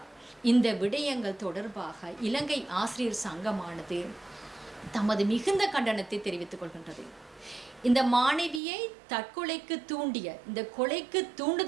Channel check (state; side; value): drops out; left; at 8.6 s